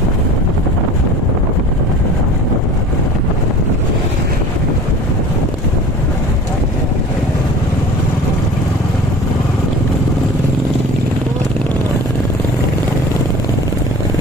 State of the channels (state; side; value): normal; both; correlation 0.41